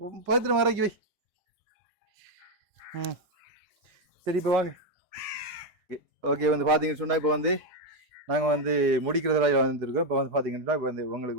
பத்திரம் வரைக்கி வை. சரி இப்போ வாங்க. ஓகே வந்து பார்த்தீங்கன்னு சொன்னால் இப்போ வந்து நாங்கள் வந்து முடிக்கிறதுல வந்துருக்கோம். இப்போ வந்து பார்த்தீங்கன்னா இப்போ வந்து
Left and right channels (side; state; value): both; normal; correlation 0.03